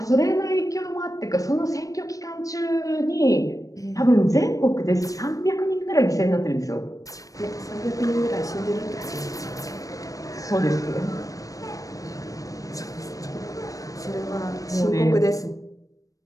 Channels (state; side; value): late; right; 0.16 ms